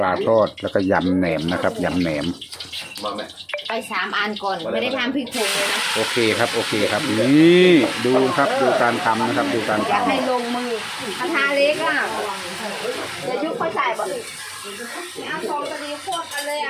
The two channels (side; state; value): both; identical; correlation 1.00